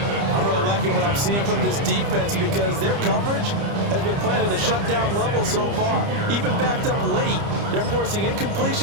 I'm really liking what I'm seeing from this defense because their coverage has been playing at a shutdown level so far. Even backed up late, they're forcing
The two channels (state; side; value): late; left; 30 ms